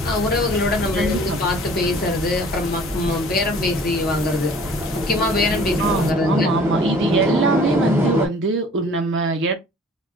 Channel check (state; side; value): normal; both; correlation 0.51